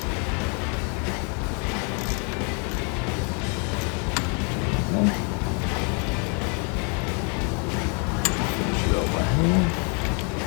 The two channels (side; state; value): right; quieter; 36.9 dB